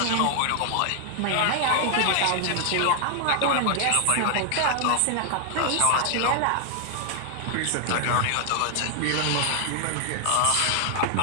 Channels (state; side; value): different; both; correlation 0.00